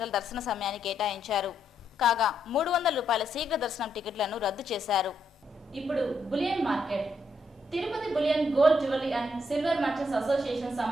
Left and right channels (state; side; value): normal; both; correlation 0.77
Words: దర్శన సమయాన్ని కేటాయించారు. కాగా 300 రూపాయల శీఘ్ర దర్శనం టికెట్లను రద్దు చేశారు. ఇప్పుడు bullion market. Tirupati bullion gold jewellery and silver merchants association